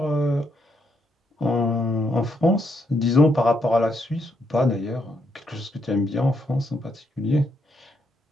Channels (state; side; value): normal; both; correlation 0.77